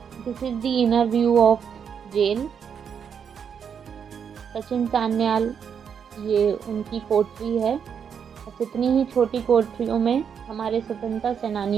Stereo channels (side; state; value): left; quieter; 7.3 dB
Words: This is the inner view of jail. Sachin Sanyal, ये उनकी कोठरी है। बस इतनी ही छोटी कोठरियों में हमारे स्वतंत्रता